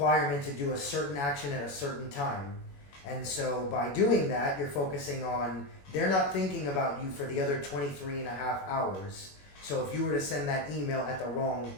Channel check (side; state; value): right; late; 21 ms